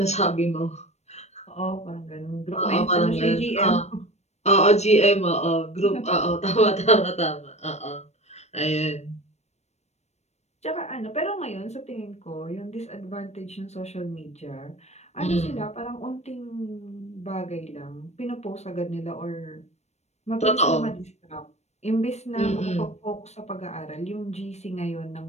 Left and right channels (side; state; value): right; late; 0.32 ms